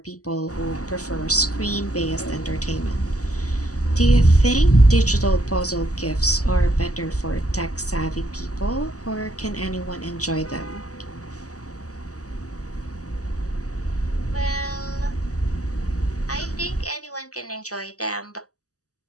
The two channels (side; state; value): right; late; 0.66 ms